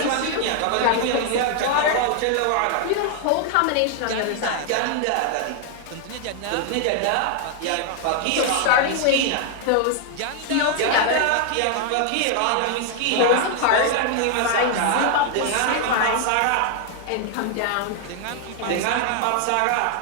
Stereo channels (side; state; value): both; different; correlation 0.00